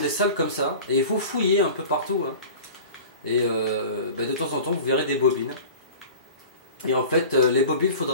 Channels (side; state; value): both; inverted; correlation -0.39